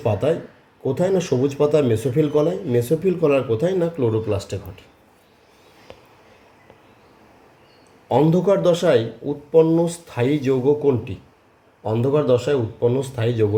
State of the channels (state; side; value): identical; both; correlation 1.00